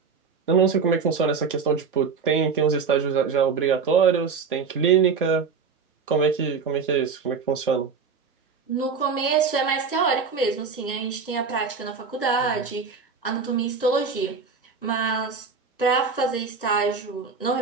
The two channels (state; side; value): quieter; left; 5.5 dB